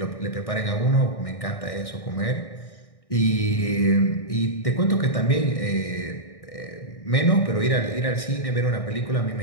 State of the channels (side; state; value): right; late; 1.6 ms